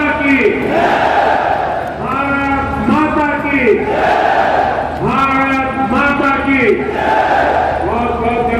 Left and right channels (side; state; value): both; identical; correlation 1.00